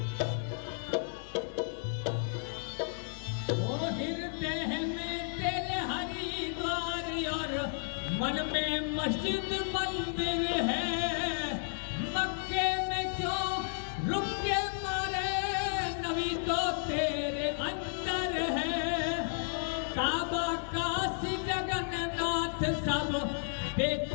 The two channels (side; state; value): right; silent; digital silence